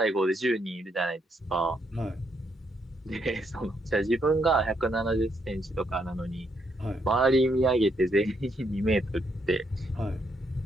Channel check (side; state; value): both; normal; correlation 0.75